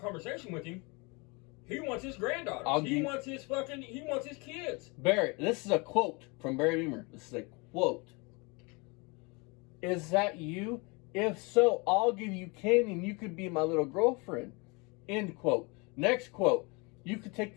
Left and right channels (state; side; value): quieter; right; 28.7 dB